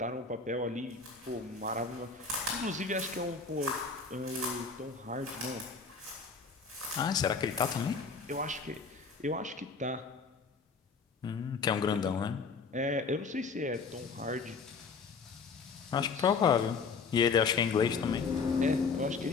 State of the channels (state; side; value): quieter; right; 4.9 dB